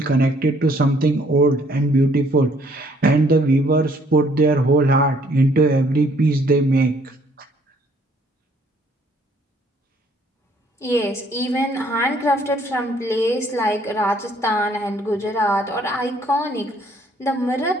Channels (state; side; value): normal; both; correlation 0.63